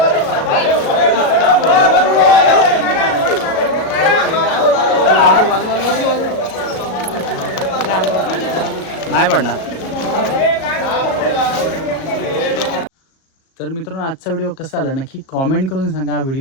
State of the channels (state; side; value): late; right; 37 ms